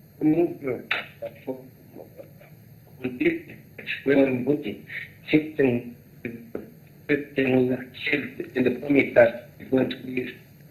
movement for when voting, in the promise that it's going to be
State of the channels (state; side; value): identical; both; correlation 1.00